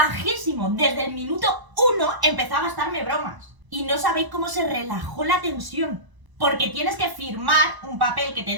Desde el minuto 1 empezaba a gastarme bromas. Y no sabéis cómo se relajó la tensión. Porque tienes que firmar un papel que te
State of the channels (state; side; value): late; left; 1.0 ms